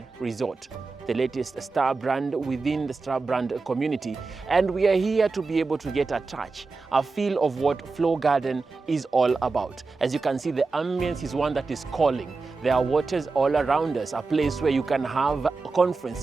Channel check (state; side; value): quieter; left; 4.0 dB